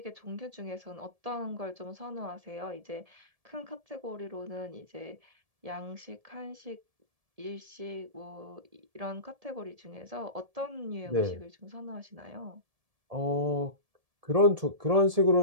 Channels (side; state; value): left; late; 1.7 ms